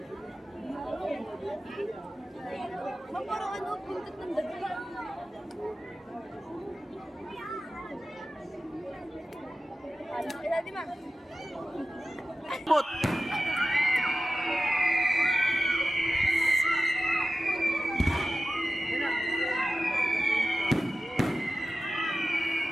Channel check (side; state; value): both; normal; correlation 0.94